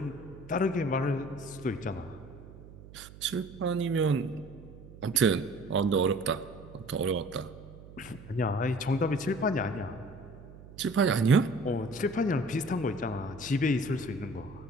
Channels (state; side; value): noise; right; hum, 18 dB below the sound